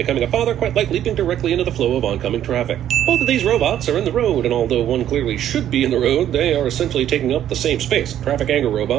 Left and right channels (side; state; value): left; quieter; 11.1 dB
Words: a father quite like leaping directly into the flow of oncoming traffic. Both of these robots are in the road, and although one clearly should be in the road, they are essentially taking up the same space. Traffic anger